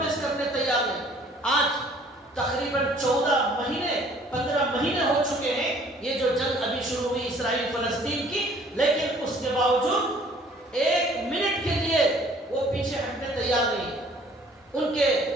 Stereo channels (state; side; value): normal; both; correlation 0.56